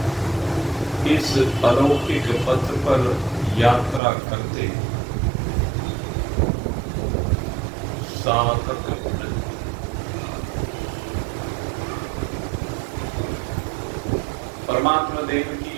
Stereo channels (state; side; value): drops out; left; at 4.0 s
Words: इस अलौकिक पथ पर यात्रा करते साधक परमात्मा देव